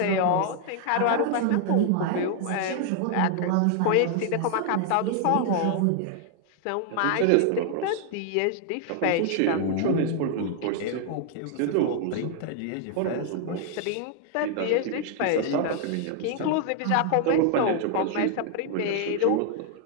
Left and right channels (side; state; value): both; different; correlation 0.00